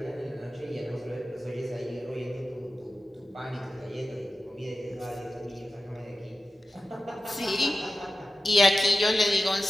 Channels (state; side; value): normal; both; correlation 0.94